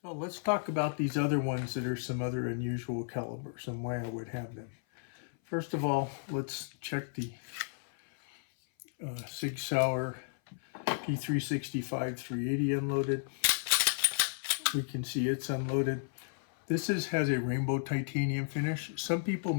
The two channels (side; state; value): right; silent; 55 dB below the other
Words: So let's talk about these other ones that are some other unusual calibers and why I would have them. First of all, let's check the Sig Sauer P365 380 unloaded. We can see it's unloaded. This has a rainbow titanium finish. Some people